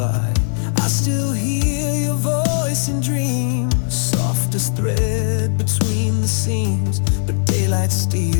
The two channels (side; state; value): right; silent; 66 dB below the other